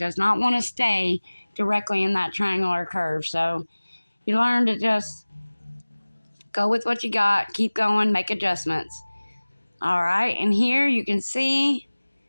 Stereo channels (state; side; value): inverted; both; correlation -1.00